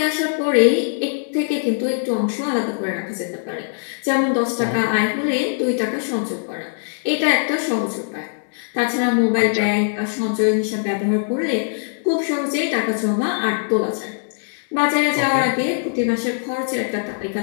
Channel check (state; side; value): silent; right; digital silence